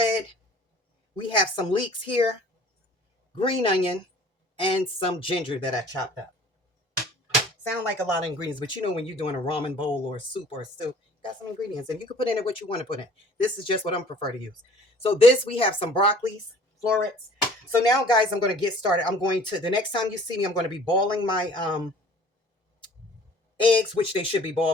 We have some leeks here, green onion, and some ginger that I chopped up. Sound like a lot of ingredients, but you know when you're doing a ramen bowl or a soup or a stew, got some ingredients, and you can put in it what you want to put in. This is just what I'm prefer to use. So this, we have some broccolis, florets. So now, guys, I'm going to get started. I'm going to, the next time you see me, I'm going to be boiling my eggs, which they should be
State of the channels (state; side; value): normal; both; correlation 0.51